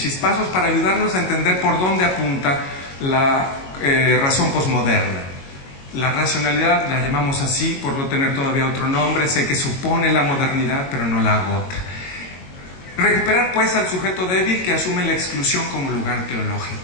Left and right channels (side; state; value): right; late; 22 ms